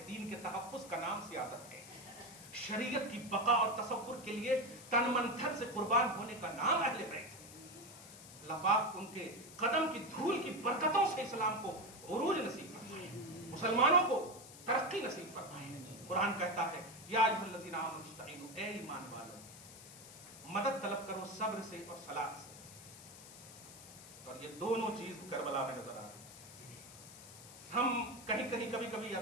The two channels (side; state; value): left; noise; hiss, 16 dB below the sound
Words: دین کے تحفظ کا نام سیادت ہے. شریعت کی بقا اور تصور کے لیے تن من دھن سے قربان ہونے کا نام اہل بیت. اللہ پاک ان کے قدم کی دھول کی برکتوں سے اسلام کو عروج نصیب فرمائے, مسلمانوں کو ترقی نصیب فرمائے. قرآن کہتا ہے یا ایھا الذین آمنوا استعینوا, اے ایمان والو مدد طلب کرو صبر سے اور صلاۃ سے. اور یہ دونوں چیز کربلا میں نظر آ رہی. ہم کہیں کبھی یا